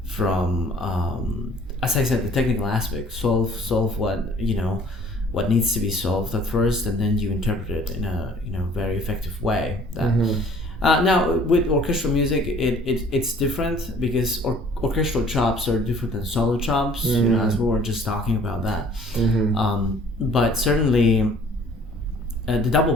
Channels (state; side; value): normal; both; correlation 0.54